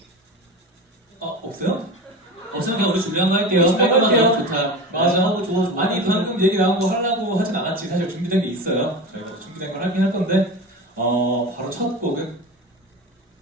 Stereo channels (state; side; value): normal; both; correlation 0.28